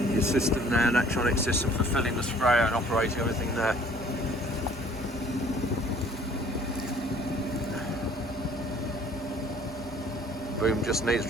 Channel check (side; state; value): both; normal; correlation 0.55